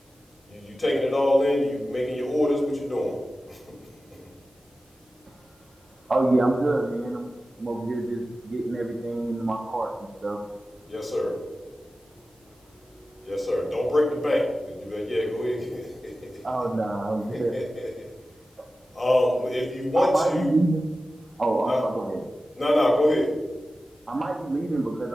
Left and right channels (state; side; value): normal; both; correlation 0.94